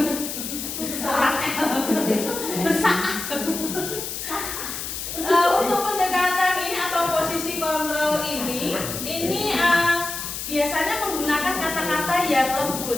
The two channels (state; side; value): noise; left; hiss, 6 dB below the sound